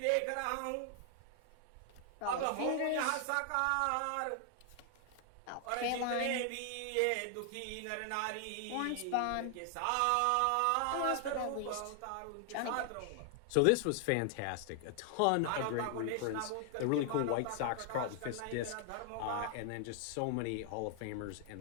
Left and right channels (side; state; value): both; different; correlation 0.00